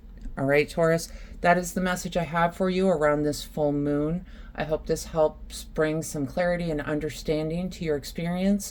All right, Taurus, that is the message I have for you around this full moon. I hope this helps bring some clarity and understanding to your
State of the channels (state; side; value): identical; both; correlation 1.00